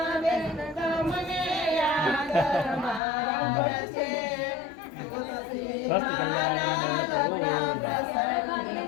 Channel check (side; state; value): right; drops out; at 3.0 s